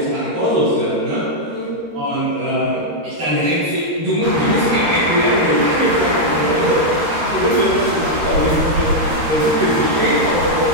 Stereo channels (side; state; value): left; late; 13 ms